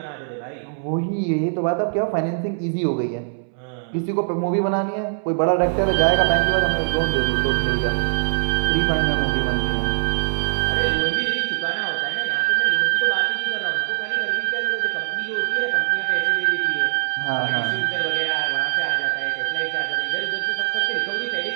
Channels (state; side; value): silent; left; 64 dB below the other